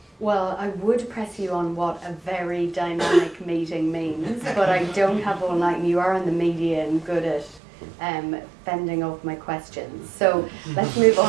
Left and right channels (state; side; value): drops out; left; at 7.6 s